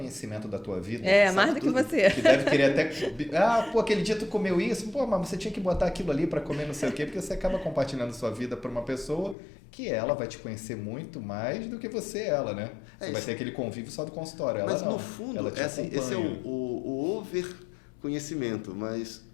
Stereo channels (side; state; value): right; drops out; at 9.3 s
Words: da tua vida. Mais do que você. Que deve querer até... aquele dia tu comeu isso, mas você tinha que botar aquilo ali para comer não sei o quê, porque você acaba compartilhando sua vida para uma pessoa que ela vai te conhecer muito mais do que você ela, né? Você vai ter aquele convívio só do consultório. Ela mas não. No fundo, esse é o over conhecimento, mas